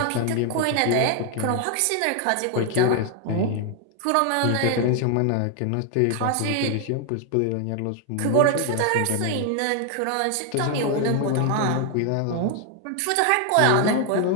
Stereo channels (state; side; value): different; both; correlation 0.00